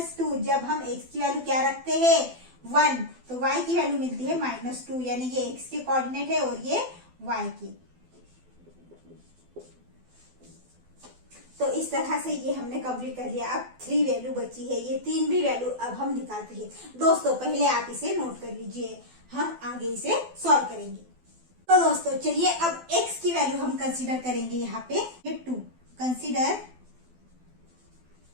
जब हम x की वैल्यू क्या रखते हैं 1, तो y की वैल्यू मिलती है -2, यानी ये x के कोऑर्डिनेट है और ये y की। तो इस तरह से ये हमने कंप्लीट कर लिया। अब 3 वैल्यू बची है, ये 3 भी वैल्यू अब हम निकालते हैं। दोस्तों पहले आप इसे नोट कर लीजिए, हम आगे इसे सॉल्व करेंगे। तो दोस्तों चलिए अब x की वैल्यू हम कंसीडर करेंगे। यहाँ पे 2 consider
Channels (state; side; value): late; left; 12 ms